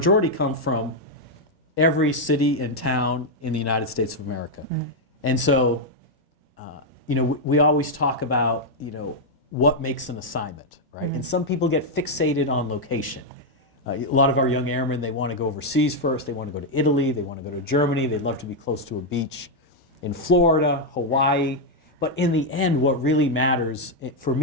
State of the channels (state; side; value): normal; both; correlation 0.00